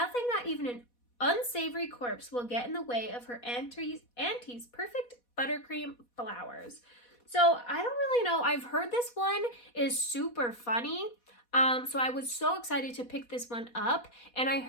not even an unsavory corpse, will get in the way of her auntie's perfect buttercream flowers. So I don't really know. I've heard this one is super funny. So I was so excited to pick this one up, and I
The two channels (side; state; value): right; late; 4.1 ms